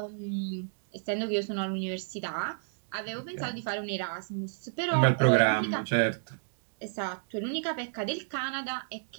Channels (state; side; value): silent; left; digital silence